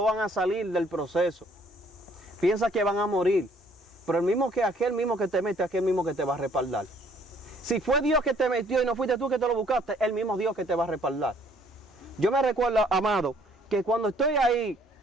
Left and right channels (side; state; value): both; normal; correlation 0.62